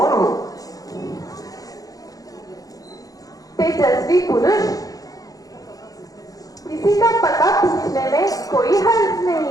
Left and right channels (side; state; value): right; late; 0.17 ms